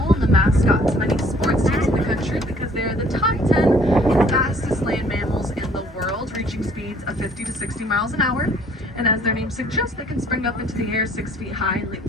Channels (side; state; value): both; normal; correlation 0.58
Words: and the mascot to many sports teams in the country because they are the top 10 fastest land mammals in the world, reaching speeds of 50 to 60 miles an hour. And as their name suggests, they can spring up into the air 6 feet high and leap